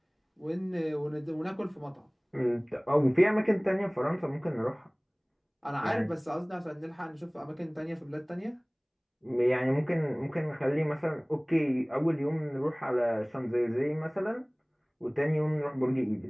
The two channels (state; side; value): identical; both; correlation 1.00